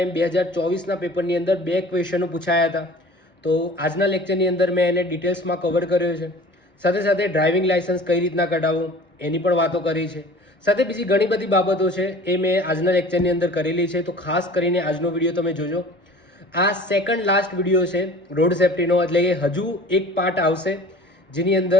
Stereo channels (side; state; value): both; normal; correlation 0.44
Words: 2024ના પેપરની અંદર 2 ક્વેશ્ચનો પૂછાયા હતા. તો આજના લેક્ચરની અંદર મેં એને ડિટેલ્સમાં કવર કર્યો છે. સાથે સાથે ડ્રાઇવિંગ લાયસન્સ કઈ રીતના કઢાવવું એની પણ વાતો કરી છે. સાથે બીજી ઘણી બધી બાબતો છે એ મેં આજના લેક્ચરની અંદર કરેલી છે. તો ખાસ કરીને આજનો વિડીયો તમે જોજો. આ સેકન્ડ લાસ્ટ વિડીયો છે રોડ સેફ્ટીનો, એટલે કે હજુ એક પાર્ટ આવશે જેની અંદર